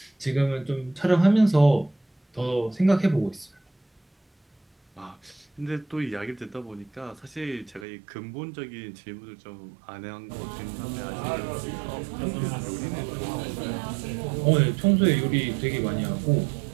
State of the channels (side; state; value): left; drops out; at 7.9 s